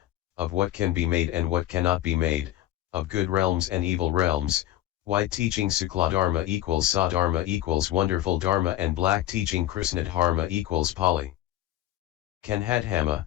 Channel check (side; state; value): right; quieter; 13.9 dB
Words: of what can be made and what cannot be made, of good realms and evil realms, white teaching Sukla Dharma equals Sadharma equals wonderful Dharma and black teaching Krishna Dharma equals Pali Kanhadhama,